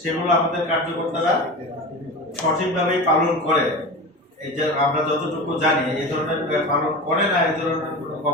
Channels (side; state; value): both; normal; correlation 0.29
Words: সেগুলো আমাদের কার্যকর্তারা সঠিকভাবেই পালন করে। এই যে আমরা যতটুকু জানি এই ধরনের পালন করে না, এই ধরনের কোনো